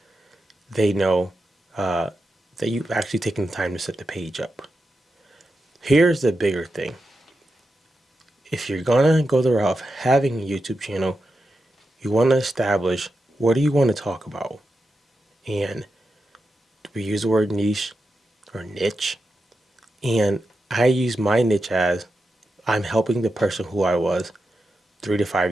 they know that you've actually taken the time to set the page up. Here's the bigger thing. If you're gonna go the route of having a YouTube channel, you want to establish what do you want to talk about. And we use the word niche or niche. And I use my niche as I'm helping the person who I was 3 to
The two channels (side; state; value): both; normal; correlation 0.89